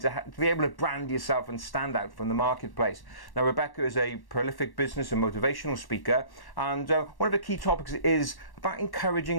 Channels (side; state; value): right; late; 1.1 ms